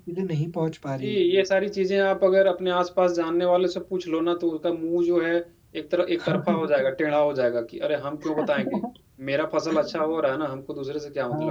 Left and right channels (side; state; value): both; identical; correlation 1.00